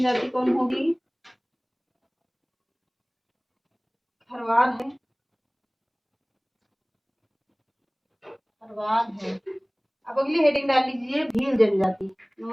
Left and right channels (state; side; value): identical; both; correlation 1.00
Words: कौन होगी? खरवार है। खरवार है। अब अगली हेडिंग डाल लीजिए, भील जनजाति।